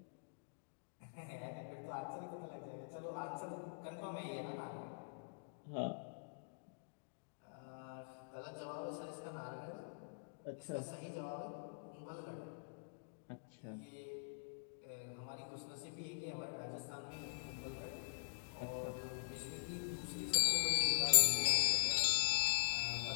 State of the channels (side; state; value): right; silent; digital silence